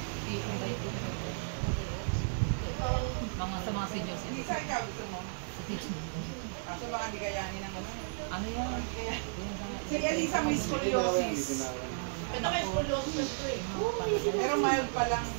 Sa mga senior Hindi citizen. sa ikaw gusto mo. Kaso baka di kayanin ng ano. Ano yan? Si Elisa may Hindi ginawan, hindi scoliosis. ginawan. Ito may scoliosis eh. Pero mild pa lang.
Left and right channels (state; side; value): silent; left; digital silence